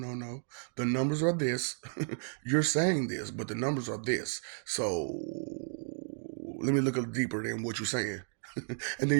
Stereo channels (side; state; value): left; silent; 56 dB below the other